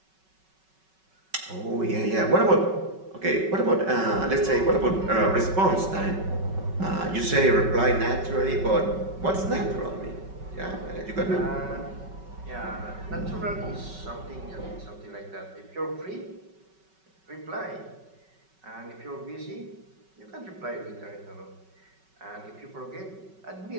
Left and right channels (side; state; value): left; late; 5.3 ms